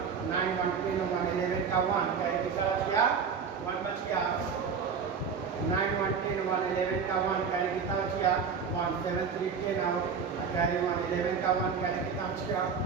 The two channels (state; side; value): quieter; left; 6.1 dB